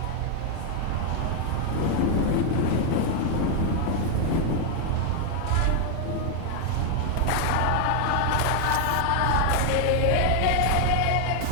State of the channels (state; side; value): different; both; correlation 0.01